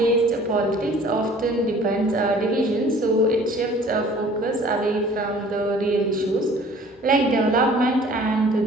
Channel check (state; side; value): normal; both; correlation 0.51